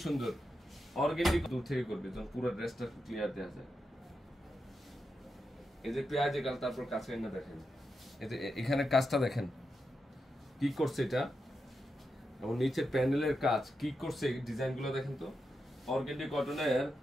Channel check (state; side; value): normal; both; correlation 0.87